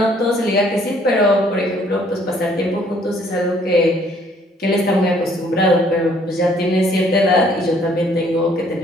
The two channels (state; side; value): normal; both; correlation 0.62